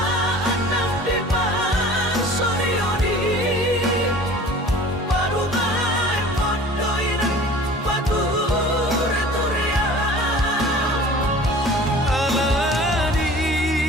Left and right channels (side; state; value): both; normal; correlation 0.44